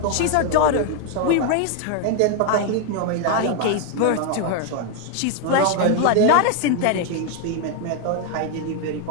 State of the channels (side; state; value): both; different; correlation 0.01